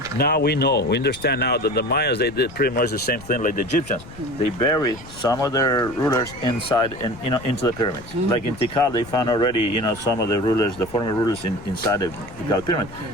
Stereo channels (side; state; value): left; noise; rumble, 17 dB below the sound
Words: Now we understand now that the Mayas, they did pretty much the same thing like the Egyptians. They buried some of their rulers inside and into the pyramids. Like in Tikal, they found already some of the rulers, the former rulers inside the Tikal pyramid.